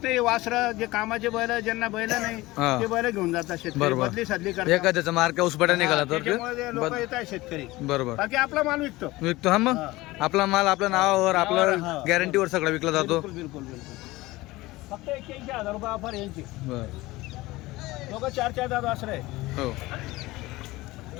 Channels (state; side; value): quieter; right; 19.6 dB